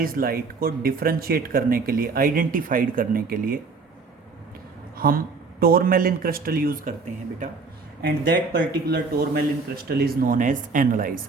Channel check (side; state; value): left; quieter; 4.4 dB